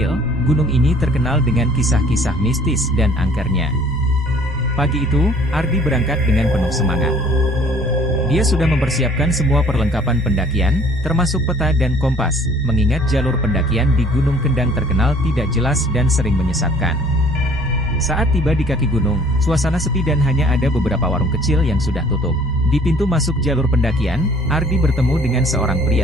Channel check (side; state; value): both; normal; correlation 0.55